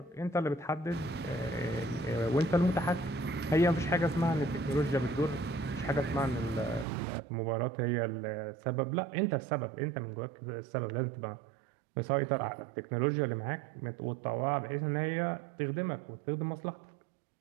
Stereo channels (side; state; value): left; drops out; at 6.9 s